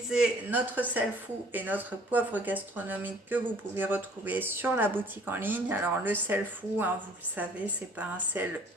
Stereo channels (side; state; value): both; normal; correlation 0.55